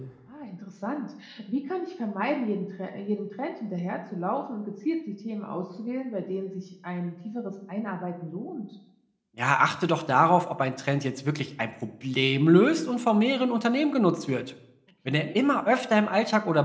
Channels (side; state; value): both; identical; correlation 1.00